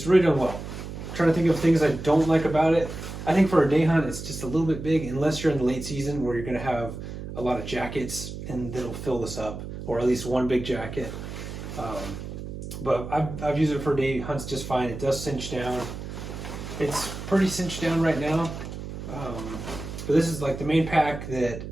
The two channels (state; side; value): noise; right; hum, 9 dB below the sound